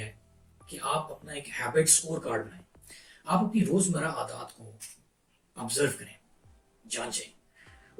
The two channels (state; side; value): identical; both; correlation 1.00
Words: کہ آپ اپنا ایک ہیبٹ اسکور کارڈ بنائیں. آپ اپنی روزمرہ عادات کو آبزرو کریں، جانچیں